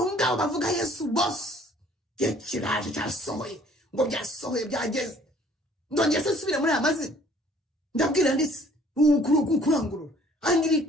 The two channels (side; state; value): both; normal; correlation 0.57